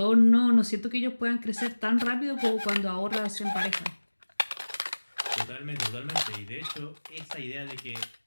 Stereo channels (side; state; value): both; inverted; correlation -1.00